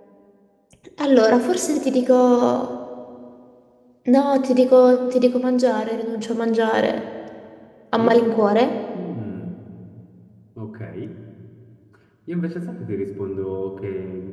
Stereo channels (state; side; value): identical; both; correlation 1.00